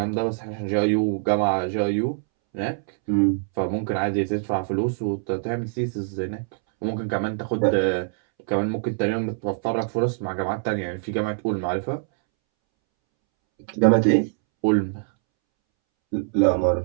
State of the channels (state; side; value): silent; left; 63 dB below the other